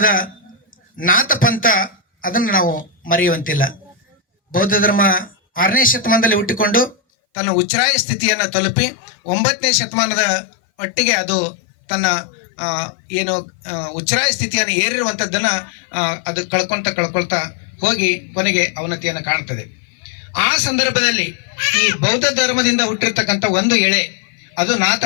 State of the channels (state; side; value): drops out; right; at 7.0 s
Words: ನಾಥ ಪಂಥ ಅದನ್ನು ನಾವು ಮರೆಯುವಂತಿಲ್ಲ. ಬೌದ್ಧ ಧರ್ಮ 6ನೇ ಶತಮಾನದಲ್ಲಿ ಹುಟ್ಟಿಕೊಂಡು ತನ್ನ ಉಚ್ಛ್ರಾಯ ಸ್ಥಿತಿಯನ್ನು ತಲುಪಿ 9ನೇ ಶತಮಾನದ ಒಟ್ಟಿಗೆ ಅದು ತನ್ನ ಏನು ಉಚ್ಛ್ರಾಯ ಸ್ಥಿತಿಯನ್ನು ಏರಿರುವಂಥದ್ದನ್ನು ಅದು ಕಳ್ಕೊಳ್ತಾ ಹೋಗಿ ಕೊನೆಗೆ ಅವನತಿಯನ್ನು ಕಾಣ್ತದೆ. ಆ ಸಂದರ್ಭದಲ್ಲಿ ಈ ಬೌದ್ಧ ಧರ್ಮದಿಂದ ಹುಟ್ಟಿರ್ತಕ್ಕಂಥ ಒಂದು ಎಳೆ, ಅದು ನಾಥ